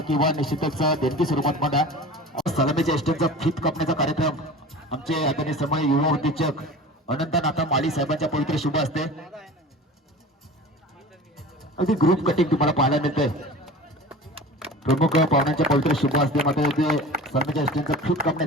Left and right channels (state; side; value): normal; both; correlation 0.37